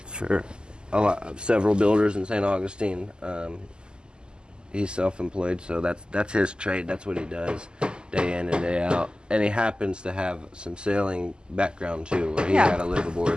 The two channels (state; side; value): late; left; 0.047 ms